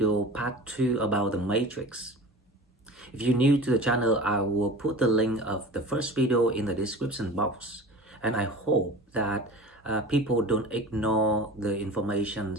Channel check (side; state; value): both; normal; correlation 0.36